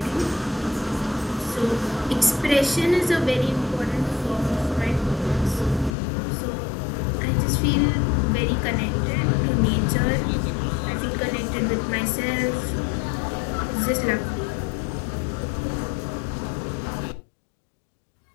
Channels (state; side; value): drops out; right; at 6.0 s